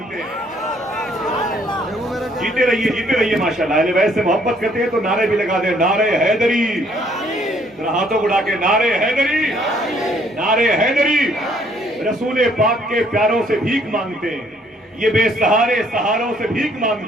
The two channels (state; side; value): normal; both; correlation 0.64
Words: ہیں. جیتے رہیے ماشاءاللہ. اہل بیت سے محبت کرتے ہیں تو نعرے بھی لگا دیں, نعرے حیدری. ہاتھوں اڑا کے نعرے حیدری, نعرے حیدری. رسول پاک کے پیاروں سے بھیک مانگتے ہیں, یہ بے سہارے سہاروں سے بھیک